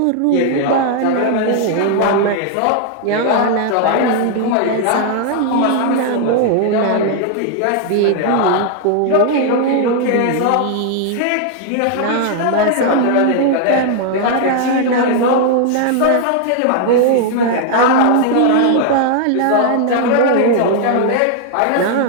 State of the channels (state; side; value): different; both; correlation 0.00